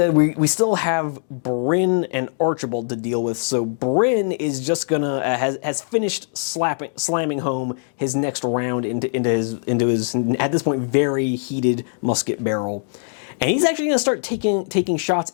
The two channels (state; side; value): silent; right; digital silence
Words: we still have Bryn and Archibald to deal with. So Bryn is just gonna has finished slamming home his next round into his at this point very heated musket barrel. And he's actually going to start taking shots